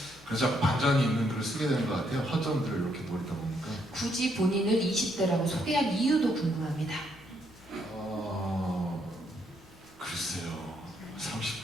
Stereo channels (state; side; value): noise; left; hum, 26 dB below the sound